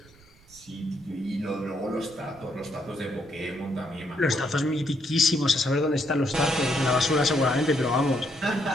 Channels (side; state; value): right; noise; rumble, 26 dB below the sound